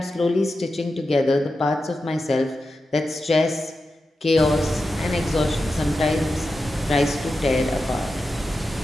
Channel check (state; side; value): normal; both; correlation 0.90